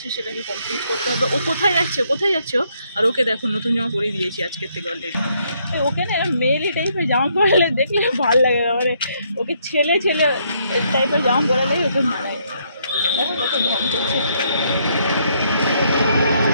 সেটাকে কমপ্লিট করতে হবে। ও কোথায় যাচ্ছে, কোথায় যাচ্ছে ও? আর ওকে দেখো নতুন জামা পরিয়ে দিয়েছি আজকের থেকে অলরেডি। ওকে না মেয়েলি টাইপের জামা পরালে দেখলে ভালো লাগে না, মানে ওকে ছেলে ছেলে টাইপের জামা পরালে ওকে মানায়। দেখো কত ঢং করছে।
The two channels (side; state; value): both; inverted; correlation -0.72